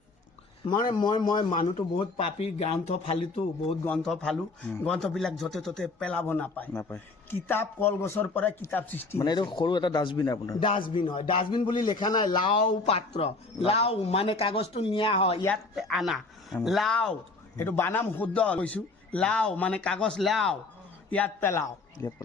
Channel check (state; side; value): quieter; right; 3.6 dB